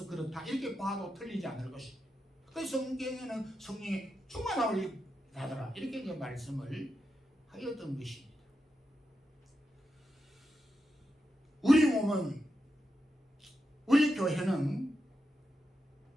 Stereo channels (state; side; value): normal; both; correlation 0.88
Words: 그렇다, 이렇게 봐도 틀리지 않을 것입니다. 그 성경에는 성령이 충만하리 하더라, 이렇게 이제 말씀을 하였던 것입니다. 우리 몸은, 우리 교회는